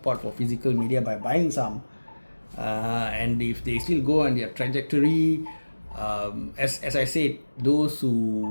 for physical media by buying some. And if they still go on their trajectory, as I said, those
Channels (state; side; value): inverted; both; correlation -1.00